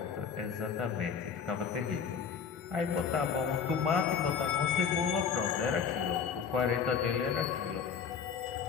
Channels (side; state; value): right; quieter; 6.8 dB